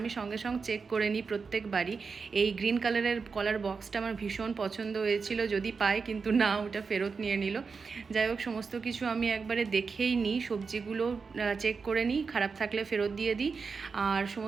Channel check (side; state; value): left; quieter; 5.1 dB